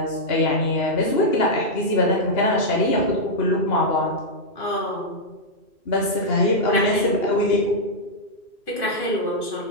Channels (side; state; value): right; late; 2.8 ms